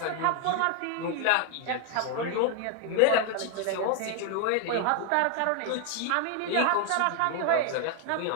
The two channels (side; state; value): both; different; correlation 0.01